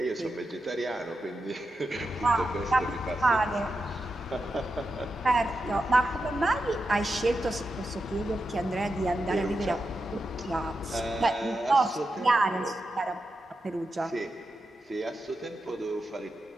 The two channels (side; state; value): both; normal; correlation 0.88